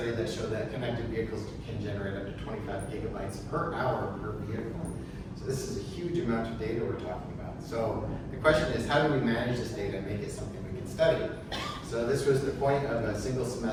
that showed that connected vehicles can generate up to 25 gigabytes per hour per vehicle. So this is a huge amount of data we're talking about. So the question is, how do we manage this data and make it something we can study? So this was the point of a single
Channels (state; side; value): identical; both; correlation 1.00